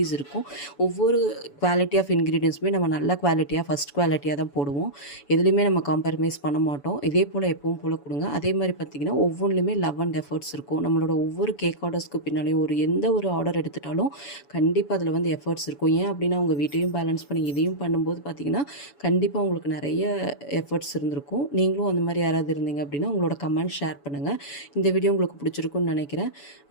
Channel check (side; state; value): right; late; 7.0 ms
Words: இருக்கும். ஒவ்வொரு குவாலிட்டி ஆஃப் இன்க்ரீடியன்ஸுமே நம்ம நல்ல குவாலிட்டியாக ஃபஸ்ட் குவாலிட்டியாக தான் போடுவோம். எதுலேயுமே நம்ம காம்ப்ரமைஸ் பண்ண மாட்டோம். இதே போல் எப்பவும் போல் கொடுங்க. அதே மாதிரி பார்த்திங்கன்னா ஒவ்வொன்றுலையுமே லவ் அண்ட் எஃபர்ட்ஸ் இருக்கும். நம்மளோட ஒவ்வொரு கேக் ஆர்டர்ஸ்க்கு பின்னாலேயும் எந்த ஒரு ஆர்டர் எடுத்துட்டாலும் கண்டிப்பாக அதில் வந்து எஃபர்ட்ஸ் இருக்கும். ஏன் அப்படின்னா உங்கள் வீட்டையும் பேலன்ஸ் பண்ணி இதையும் பண்ணும்போது பார்த்திங்கன்னா கண்டிப்பாக உங்களுக்கு நிறைய எஃபர்ட்ஸ் இருந்திருக்கும். நீங்களும் அந்த மாதிரி யாராவது இருந்தீங்க அப்படின்னா உங்களோட கமெண்ட் ஷேர் பண்ணுங்கள். இந்த வீடியோ உங்களுக்கு பிடிச்சிருக்குன்னு நினைக்கிறேன்.